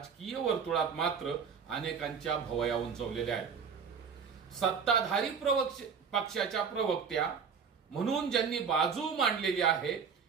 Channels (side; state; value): left; quieter; 6.3 dB